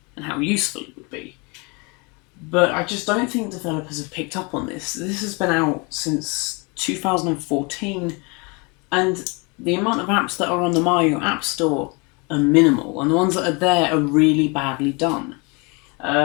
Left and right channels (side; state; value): right; quieter; 30.0 dB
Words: and how useful it would be. But I just don't think developers have picked up on this. This has been out since 2014, and the amount of apps that are on the Mayo App Store are minimal, and the ones that are there are really badly done.